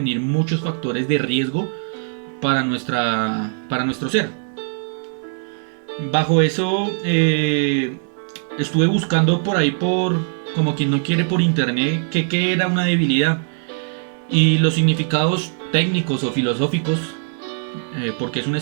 muchos factores de riesgo para nuestro ser. Bajo eso estuve buscando por ahí como quien no quiere por internet qué era una debilidad y los significados técnicos o filosóficos, porque es un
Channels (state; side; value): silent; left; 65 dB below the other